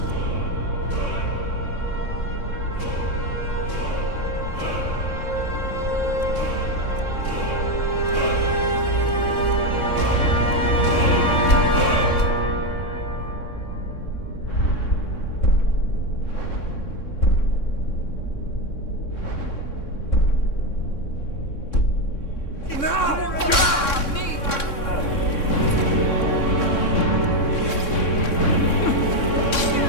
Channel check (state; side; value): late; right; 3.6 ms